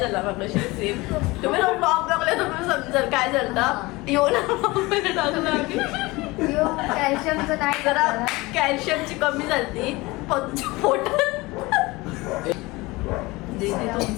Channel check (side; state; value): right; quieter; 22.1 dB